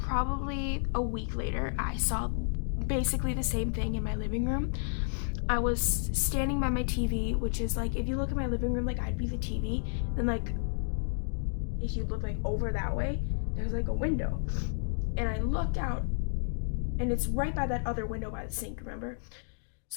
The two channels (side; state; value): right; silent; digital silence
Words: a week later. I saw basically the same thing in my living room. I was standing by my TV, which is like, if you look at my living room, like I'd be the TV, then like if you look like over that way, there's like a window, and I looked out, and it's right by that other window by the sink, remember?